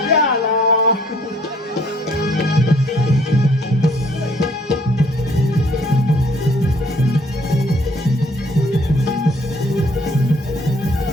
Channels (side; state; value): both; normal; correlation 0.62